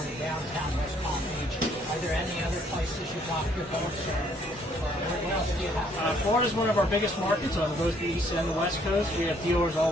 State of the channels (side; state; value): both; normal; correlation 0.65